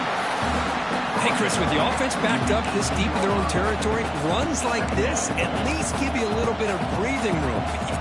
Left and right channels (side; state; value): both; identical; correlation 1.00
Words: Hey, Chris, with the offense backed up this deep in their own territory, runs like this at least give you a little bit of breathing room. But